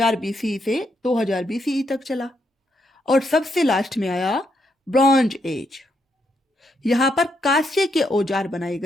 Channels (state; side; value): normal; both; correlation 0.78